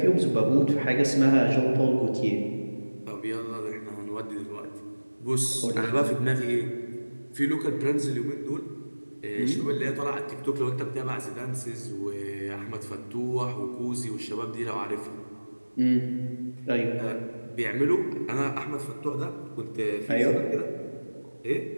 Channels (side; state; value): both; inverted; correlation -1.00